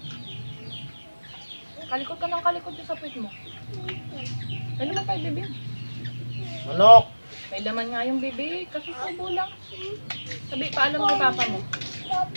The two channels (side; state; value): both; inverted; correlation -1.00